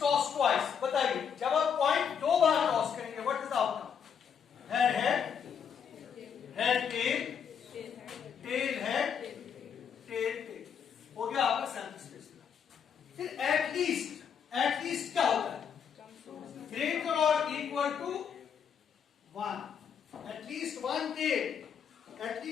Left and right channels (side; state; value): right; quieter; 7.4 dB